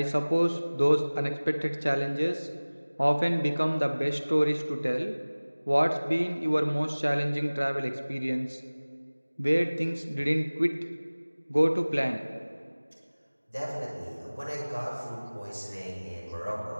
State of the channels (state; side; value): inverted; both; correlation -1.00